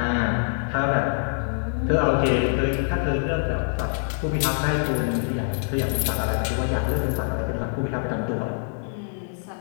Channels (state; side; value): silent; right; 62 dB below the other